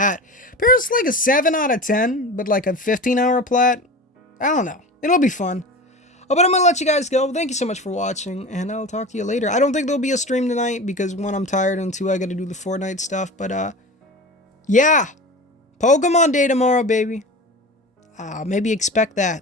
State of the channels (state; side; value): normal; both; correlation 0.32